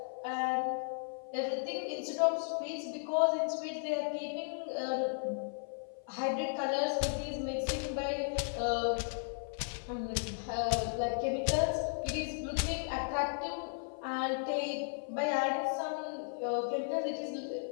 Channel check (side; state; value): right; silent; 54 dB below the other